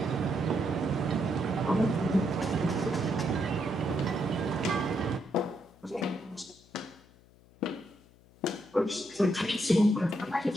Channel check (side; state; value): left; noise; hum, 27 dB below the sound